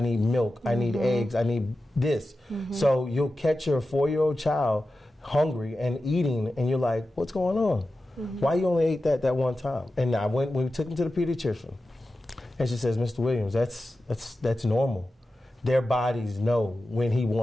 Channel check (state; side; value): normal; both; correlation 0.93